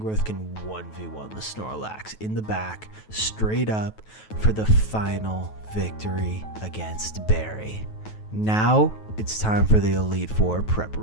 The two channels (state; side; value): late; right; 9.3 ms